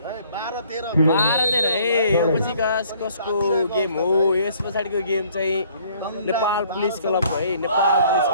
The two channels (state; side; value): inverted; both; correlation -0.59